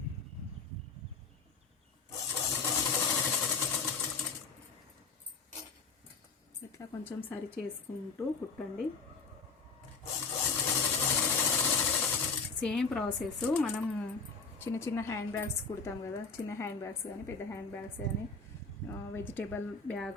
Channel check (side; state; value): right; quieter; 4.6 dB